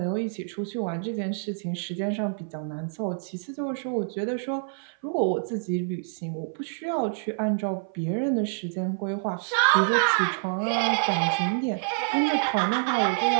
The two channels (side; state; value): left; silent; 57 dB below the other